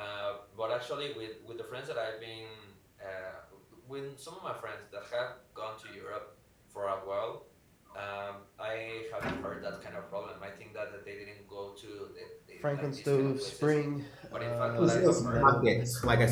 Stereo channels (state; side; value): identical; both; correlation 1.00